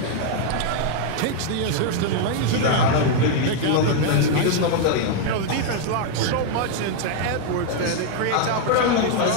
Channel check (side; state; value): both; different; correlation 0.00